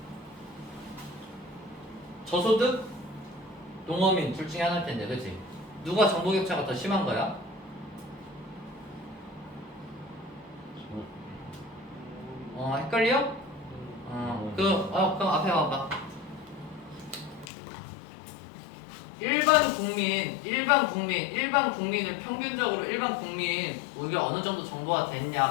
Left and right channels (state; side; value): drops out; right; at 17.5 s